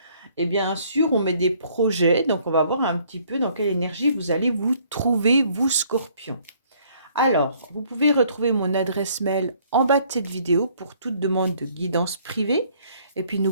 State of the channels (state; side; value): inverted; both; correlation -0.62